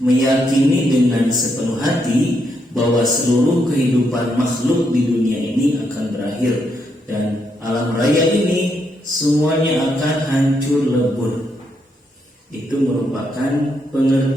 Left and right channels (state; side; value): normal; both; correlation 0.78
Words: dengan sepenuh hati bahwa seluruh kehidupan makhluk di dunia ini akan berakhir dan alam raya ini semuanya akan hancur lebur. Itu merupakan